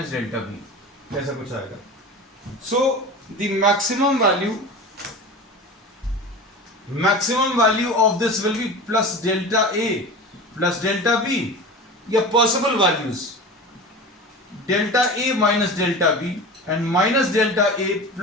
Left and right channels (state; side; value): normal; both; correlation 0.32